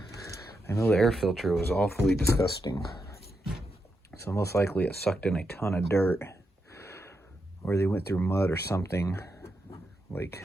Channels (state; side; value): normal; both; correlation 0.84